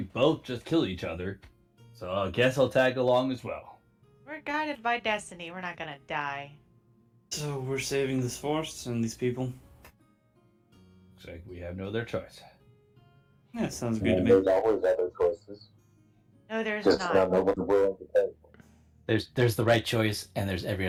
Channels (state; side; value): identical; both; correlation 1.00